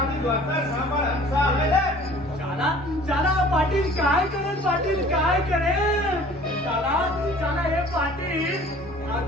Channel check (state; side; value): normal; both; correlation 0.49